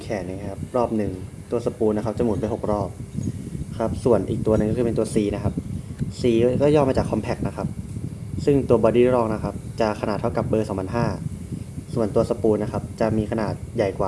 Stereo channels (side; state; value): both; identical; correlation 1.00